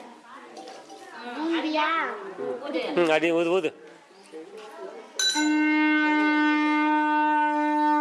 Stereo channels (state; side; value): identical; both; correlation 1.00